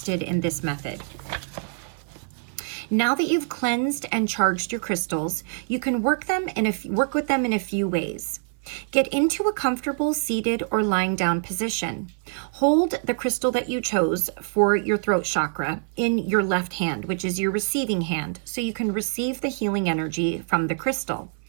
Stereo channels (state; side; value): silent; left; 58 dB below the other